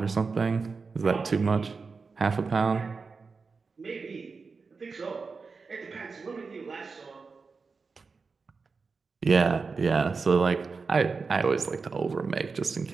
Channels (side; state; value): left; quieter; 4.6 dB